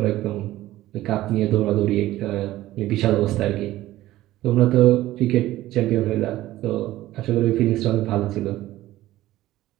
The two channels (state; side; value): quieter; left; 15.6 dB